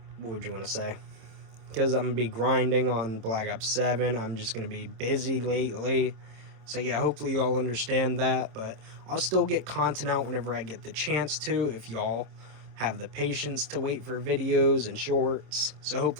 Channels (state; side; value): late; left; 27 ms